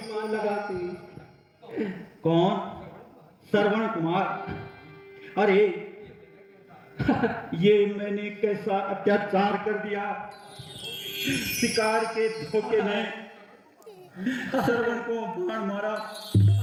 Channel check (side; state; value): both; identical; correlation 1.00